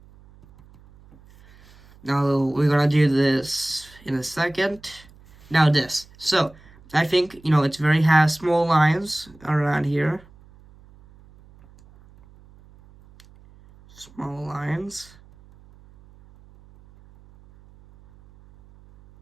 Now, we're going to do this in a second. Now, this. So, I think, it's very has small lines around here. Small lines.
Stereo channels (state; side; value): noise; right; hum, 26 dB below the sound